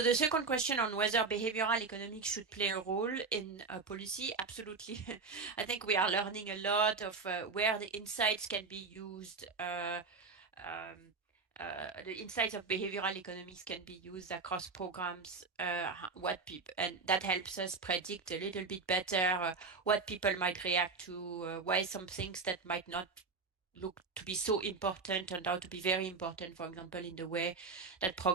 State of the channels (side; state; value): left; quieter; 4.5 dB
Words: the second question on whether behavioral economics should play a role in policy, absolutely. I think we are learning a lot of where the insights can be used. The insights of behavioral economics can be used across programs, and that helps us predict a little bit better what people might react to, why some things that might not look to be so important turned out to be very important, for example, in the way that